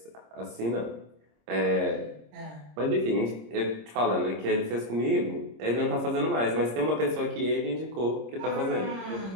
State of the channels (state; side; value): late; left; 26 ms